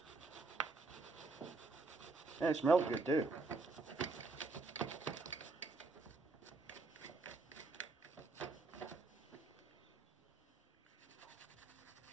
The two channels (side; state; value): left; quieter; 3.6 dB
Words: And it smells good too.